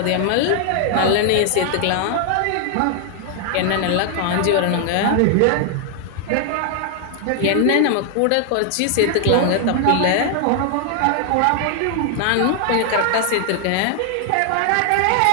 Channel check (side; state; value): both; different; correlation 0.00